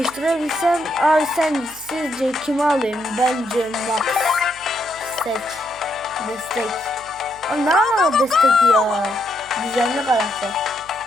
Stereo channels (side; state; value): right; noise; hum, 25 dB below the sound